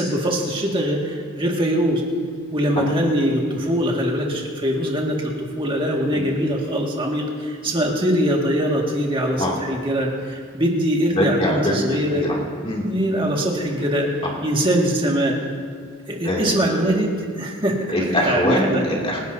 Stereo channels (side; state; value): both; normal; correlation 0.52